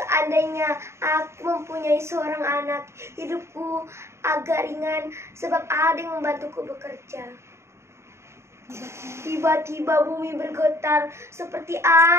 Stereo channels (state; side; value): late; left; 0.13 ms